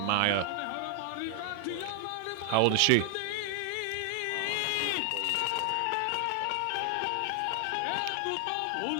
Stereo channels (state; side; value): different; both; correlation 0.00